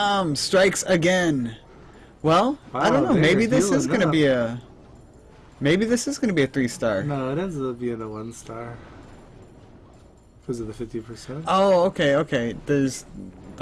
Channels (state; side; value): identical; both; correlation 1.00